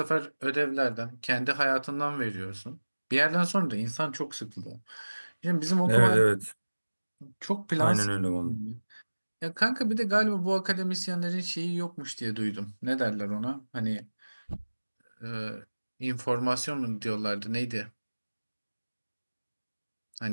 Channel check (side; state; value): both; inverted; correlation -1.00